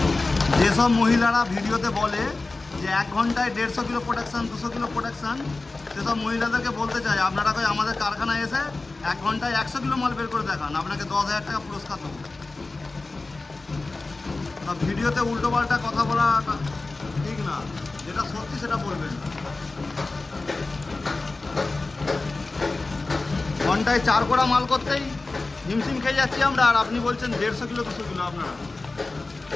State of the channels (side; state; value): right; quieter; 3.4 dB